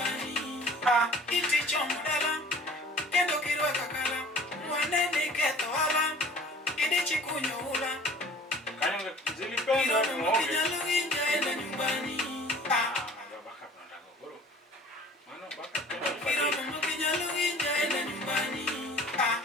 iti chomo dala kendo kirwaka kala wanene ketho ala idichi kunyo ula Kaya zilipenda Kila ni mama muonge. kinyalo winja enda nyumbani. Baka tunataka goro. Maana baka kendelo Kila fadei. mama kinyalo winja enda nyumbani.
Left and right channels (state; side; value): normal; both; correlation 0.48